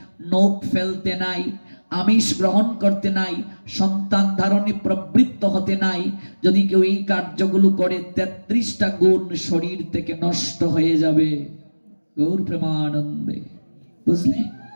নখ ফেলতে নাই, আমিষ গ্রহণ করতে নাই, সন্তান ধারণে প্রবৃত্ত হতে নাই। যদি কেউ এই কার্যগুলো করে 33টা গুণ শরীর থেকে নষ্ট হয়ে যাবে। গৌর প্রেমানন্দে, বুঝলে?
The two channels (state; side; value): inverted; both; correlation -1.00